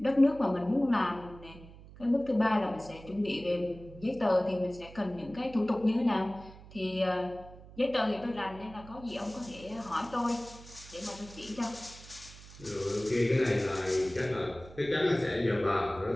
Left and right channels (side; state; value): right; noise; hum, 18 dB below the sound